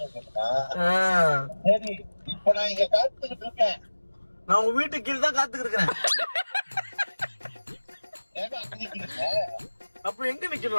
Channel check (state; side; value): inverted; both; correlation -1.00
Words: சரி இப்ப நான் இங்க காத்துக்கிட்டு இருக்கேன். நான் உங்க வீட்டுக்கு கீழே தான் காத்துக்கிட்டு இருக்கிறேன். அப்ப எங்க